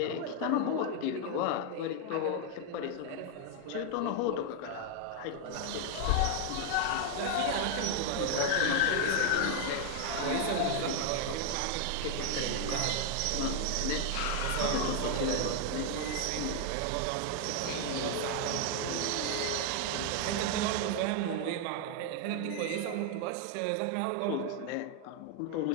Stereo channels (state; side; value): different; both; correlation 0.00